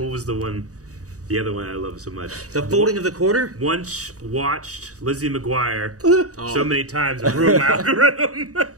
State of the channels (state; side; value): late; left; 0.66 ms